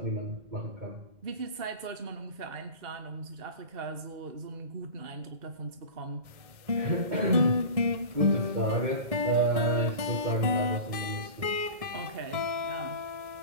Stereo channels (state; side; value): late; left; 2.1 ms